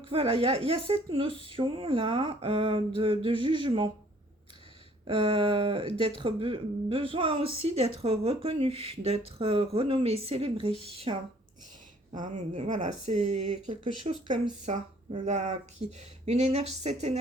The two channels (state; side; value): normal; both; correlation 0.59